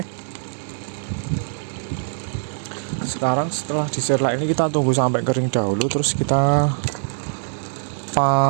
sekarang setelah diserlak ini kita tunggu sampai kering dahulu, terus kita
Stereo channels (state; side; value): silent; left; 64 dB below the other